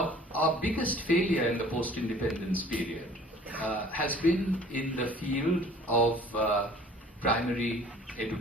our biggest failure in the post-independence period has been in the field of primary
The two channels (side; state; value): both; normal; correlation 0.50